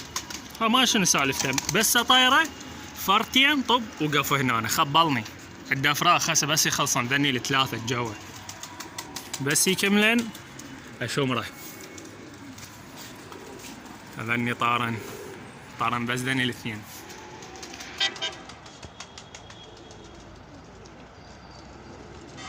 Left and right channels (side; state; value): both; identical; correlation 1.00